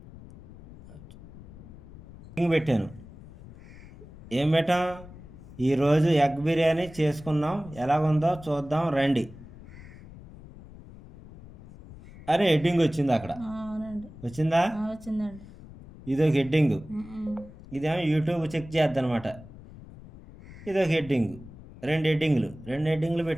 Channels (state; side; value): noise; left; rumble, 18 dB below the sound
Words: హెడ్డింగ్ పెట్టాను. ఏం పెట్టాం, ఈరోజు ఎగ్ బిర్యానీ చేసుకున్నాం, ఎలాగుందో చూద్దాం రండి అని హెడ్డింగ్ వచ్చింది అక్కడ. వచ్చిందా? వచ్చిందండి. ఇదొక హెడ్డింగ్. ఇదేమో యూట్యూబ్ చెక్ చేద్ది అనమాట. ఇదొక హెడ్డింగ్. 2 హెడ్డింగ్లు